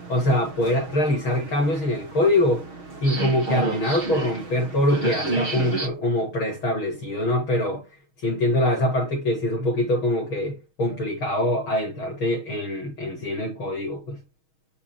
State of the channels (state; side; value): late; right; 6.3 ms